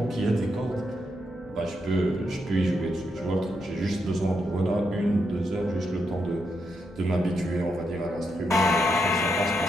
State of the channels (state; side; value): normal; both; correlation 0.81